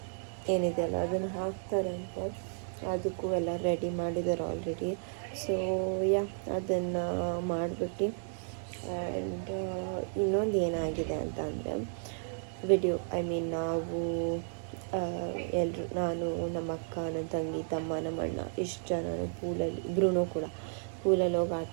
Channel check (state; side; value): silent; left; 56 dB below the other